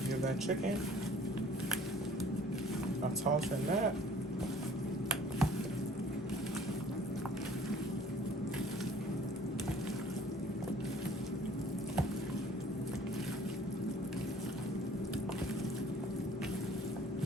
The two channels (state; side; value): normal; both; correlation 0.53